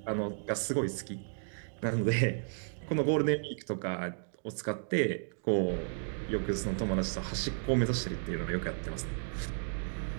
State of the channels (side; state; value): left; silent; digital silence